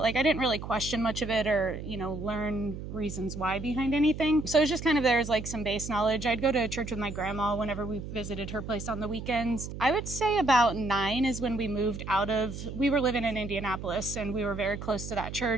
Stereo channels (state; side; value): noise; right; hum, 9 dB below the sound